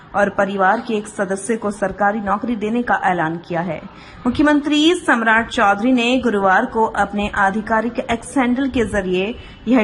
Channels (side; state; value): both; identical; correlation 1.00